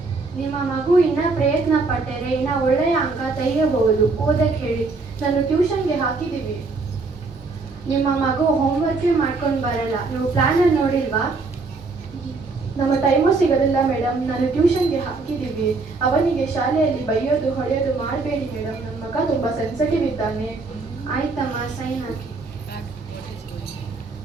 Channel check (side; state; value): left; quieter; 3.9 dB